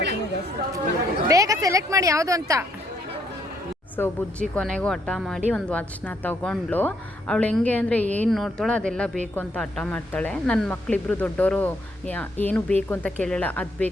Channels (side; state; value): both; normal; correlation 0.72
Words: ಬೇಗ ಸೆಲೆಕ್ಟ್ ಮಾಡಿ ಯಾವುದು ಅಂತ. ಸೊ ಸೊ ಬುಜ್ಜಿ ಕೊನೆಗೂ ಹಠ ಮಾಡಿ ಒಂದು ವಾಚ್ನ ತೊಗೊಂಡ್ಳು. ಅವಳು ಹೆಂಗೆ ಅಂದರೆ ಏನು ನೋಡ್ತಾಳೋ ಅದೆಲ್ಲ ಬೇಕು ಅಂತ ಹಠ ಮಾಡ್ತಾಳೆ. ನನ್ನ ಮಕ್ಕಳಿಬ್ರು ದೊಡ್ಡವರು ಏನು ಬೇಕು ಅಂತ ಕೇಳಲ್ಲ, ಅದು